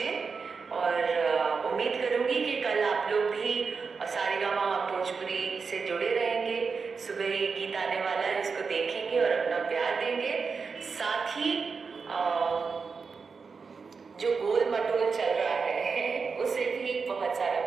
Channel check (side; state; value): left; quieter; 5.1 dB